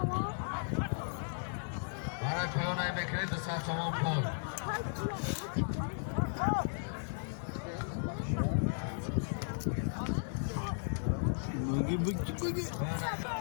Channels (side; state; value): right; silent; 54 dB below the other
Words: Harak koyonay bekleyin de sağ çaman kol. Bagi.